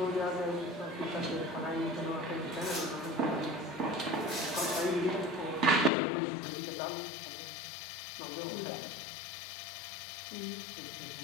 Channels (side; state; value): right; drops out; at 5.9 s